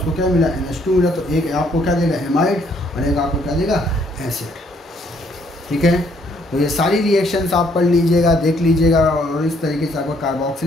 क्या मिला, NH2 मिला, तो एक आपको क्या देगा, हेमाइड, और एक आपको क्या देगा, एसिड। ठीक है, तो ये सारी रिएक्शंस आप पढ़ लीजिएगा, देख लीजिएगा, और इस तरीके से आपका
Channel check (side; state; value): both; normal; correlation 0.67